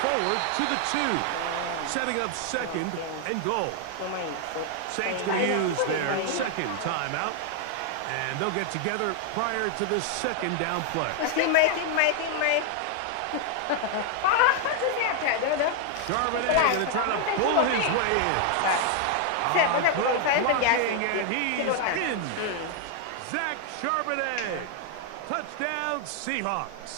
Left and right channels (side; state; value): both; different; correlation 0.00